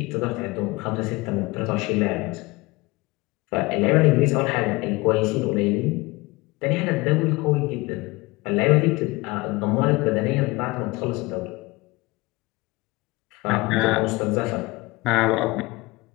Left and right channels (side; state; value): right; quieter; 22.9 dB